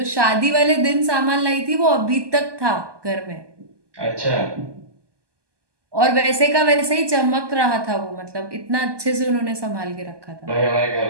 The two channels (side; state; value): left; late; 1.2 ms